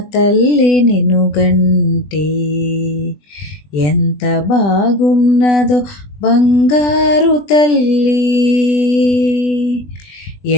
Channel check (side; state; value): right; late; 20 ms